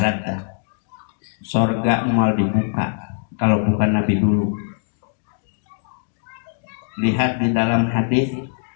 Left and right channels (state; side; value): silent; right; 64 dB below the other